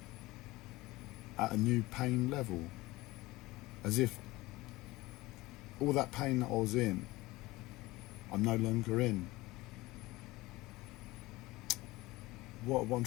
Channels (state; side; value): quieter; right; 19.9 dB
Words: at a new pain level, as if all that pain that I was in, I'm no longer in. What I'm